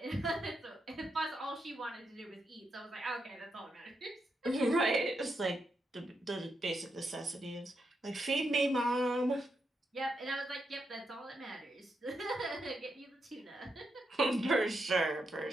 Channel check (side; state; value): both; normal; correlation 0.83